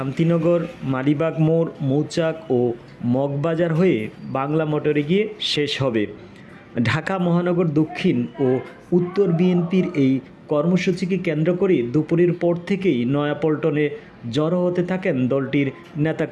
মালিবাগ মোড়, মৌচাক ও মগবাজার হয়ে বাংলা মোটরে গিয়ে শেষ হবে। ঢাকা মহানগর দক্ষিণ ও উত্তর বিএনপির এই কর্মসূচিকে কেন্দ্র করে দুপুরের পর থেকেই নয়াপল্টনে জড়ো হতে থাকেন দলটির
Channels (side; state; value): both; identical; correlation 1.00